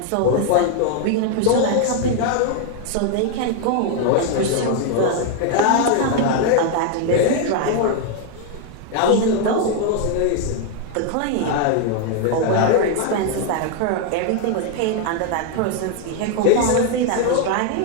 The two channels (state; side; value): different; both; correlation 0.00